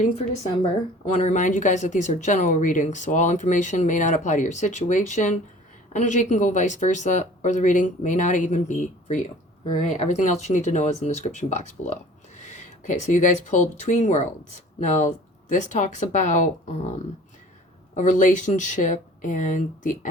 for December. I want to remind you guys that these are general readings, so all information may not apply to your situation. Energy can go vice versa, or the reading may not even be for you. All right, everything else you need to know is in the description box below. Okay, so you guys pulled Between Worlds. Now, this talks about a relationship and the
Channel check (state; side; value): normal; both; correlation 0.47